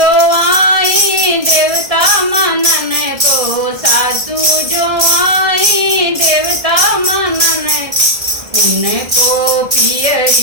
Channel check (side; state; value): left; late; 1.7 ms